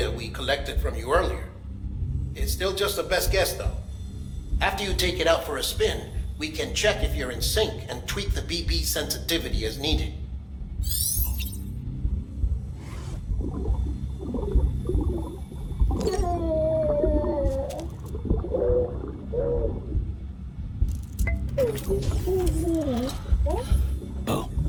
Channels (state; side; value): identical; both; correlation 1.00